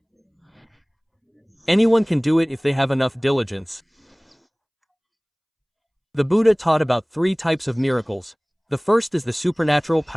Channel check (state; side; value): identical; both; correlation 1.00